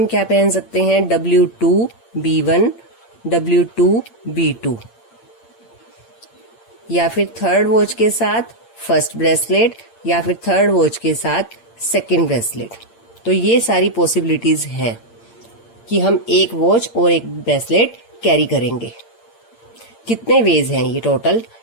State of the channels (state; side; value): late; right; 8.7 ms